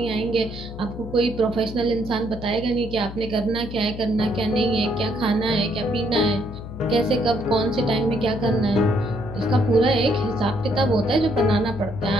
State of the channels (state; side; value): noise; left; hum, 11 dB below the sound